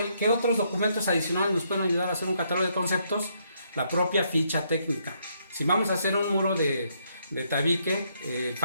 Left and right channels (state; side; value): inverted; both; correlation -0.73